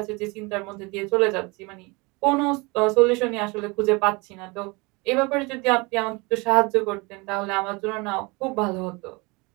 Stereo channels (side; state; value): left; quieter; 26.6 dB